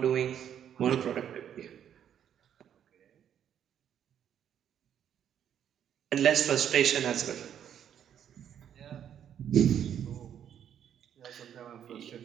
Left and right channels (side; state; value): left; quieter; 9.4 dB